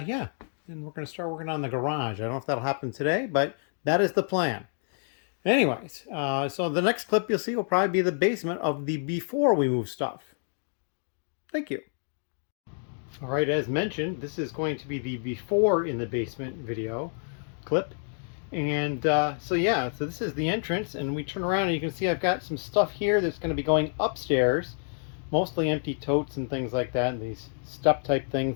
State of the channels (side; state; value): right; silent; 59 dB below the other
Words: and we're going to start working on the garage. I don't know if that'll happen today, but that is the plan. Anyways, so the next clip you'll see will probably be the basement of the before we move stuff. Thank you. All right, as mentioned, this is going to be the before in the basement video clip. And so yeah, so this is the entrance, and we turn around and you can see I've got some stuff here that's going to be going upstairs. Mostly empty totes and things like that, and these step type